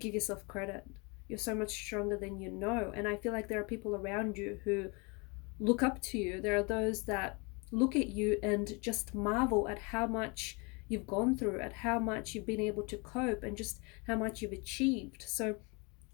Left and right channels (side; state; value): right; quieter; 30.2 dB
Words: yourself credit. You're so much stronger than you know. And I feel like there are people around you who look up to you. There are those that look at you and just marvel at how much you've gone through, at how much you've been able to cope, and just how much you've achieved. So